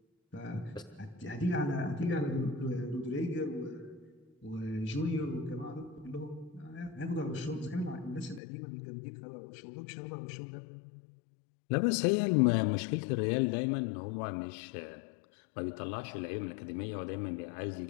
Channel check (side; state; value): right; drops out; at 8.4 s